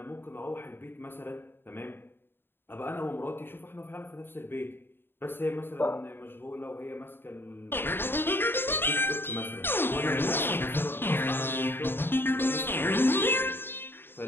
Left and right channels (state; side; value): late; right; 0.10 ms